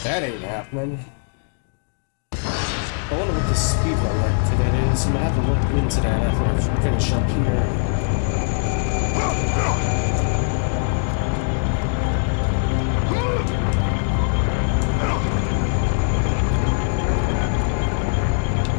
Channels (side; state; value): right; silent; digital silence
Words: that ain't happening. I wonder what the speedrun record for that is. I'm gonna have to look into that after I finish up here.